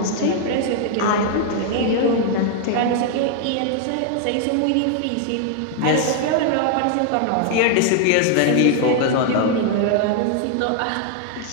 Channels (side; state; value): both; different; correlation 0.00